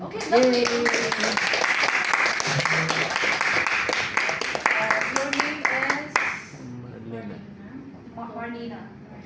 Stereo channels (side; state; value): both; identical; correlation 1.00